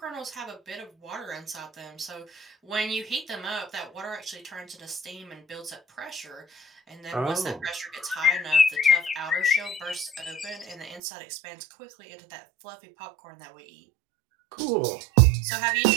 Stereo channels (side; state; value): left; drops out; at 11.0 s